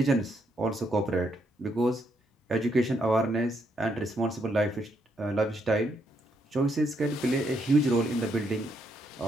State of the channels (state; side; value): normal; both; correlation 0.76